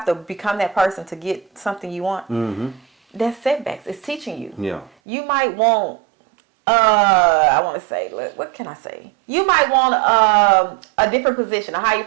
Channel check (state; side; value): drops out; left; at 4.9 s